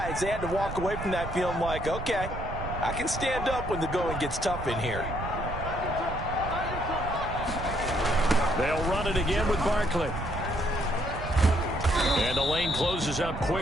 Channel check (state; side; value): noise; right; rumble, 7 dB below the sound